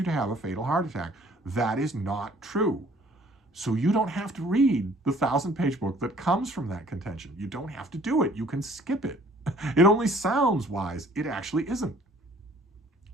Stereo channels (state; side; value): normal; both; correlation 0.56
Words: to have a fatal heart attack. That is not true. So you don't have to read the 1,000-page book that comes from that contention. You don't have to do it. You can skip it. It only sounds wise. It actually isn't.